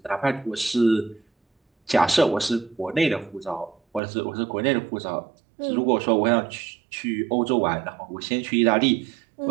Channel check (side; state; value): left; drops out; at 4.0 s